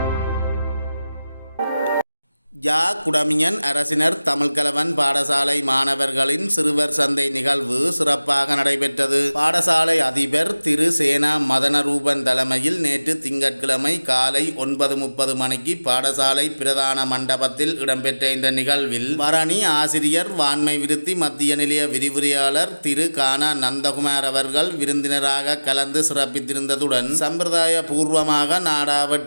குடமியன் அரசினர் தமிழ்கலவன் பாடசாலை மாணவர்களின் சிறுவர் சந்தை நிகழ்வு சிறப்பாக நடைபெற்றது. பாடசாலை அதிபர் திரு சேனா மதனரூபன் தலைமையில் நேற்று திங்கட்கிழமை காலை 9:30 மணிக்கு பாடசாலை பிரதான மண்டபத்தில் இடம்பெற்ற இந்த நிகழ்வில் வரணி ஆசிரியர் வான்மை விருத்தி மத்திய நிலைய விரிவுரையாளர் திரு கானா நந்தகுமார் அவர்கள் விருந்தினராக கலந்து சிறப்பித்திருந்ததுடன் சம்பிரதாய பூர்வமாக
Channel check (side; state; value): both; inverted; correlation -0.98